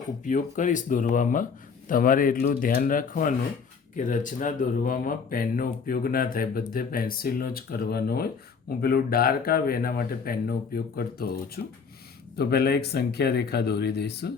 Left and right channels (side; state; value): right; quieter; 5.7 dB